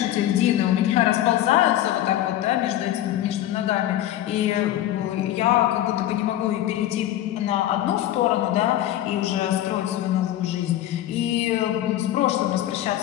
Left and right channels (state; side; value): quieter; right; 13.0 dB